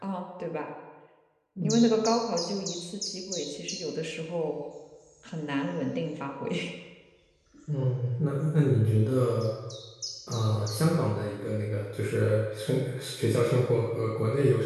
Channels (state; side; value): identical; both; correlation 1.00